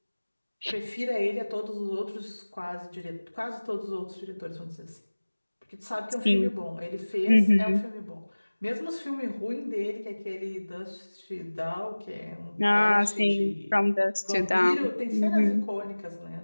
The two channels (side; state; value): both; inverted; correlation -1.00